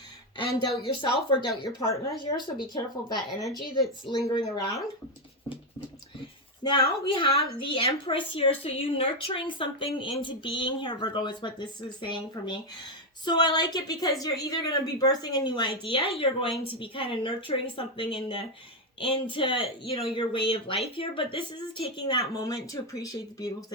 and doubt yourself or doubt your partner here. So be careful of that energy that's lingering around. Now we have the Empress here. So you nurturing something into being here, Virgo, is what this is saying for me. So I like it because you're either going to be birthing a new idea, you're going to be kind of nurturing something into your way of life here, but this is taking that moment to appreciate the beautiful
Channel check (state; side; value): normal; both; correlation 0.06